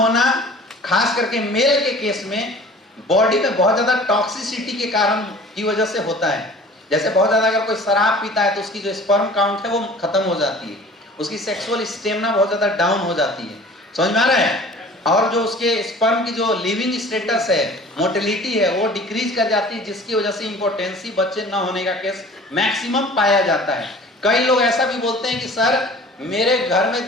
खास करके मेल के केस में बॉडी में बहुत ज्यादा टॉक्सिसिटी के कारण की वजह से होता है। जैसे बहुत ज्यादा अगर कोई शराब पीता है तो उसकी जो स्पर्म काउंट है वो खत्म हो जाती है, उसकी सेक्सुअल स्टेमिना बहुत ज्यादा डाउन हो जाती है। समझ में आ रहा है? और जो उसके स्पर्म की जो लिविंग स्टेटस है, मोटिलिटी है, वो डिक्रीज कर जाती है, जिसकी वजह से इंपोर्टेंसी, बच्चे न होने का केस मैक्सिमम पाया जाता है। कई लोग ऐसा भी बोलते हैं कि सर मेरे घर में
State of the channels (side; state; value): both; normal; correlation 0.46